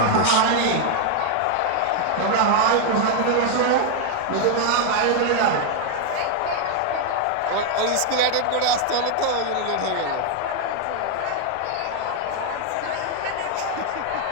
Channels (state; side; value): different; both; correlation 0.00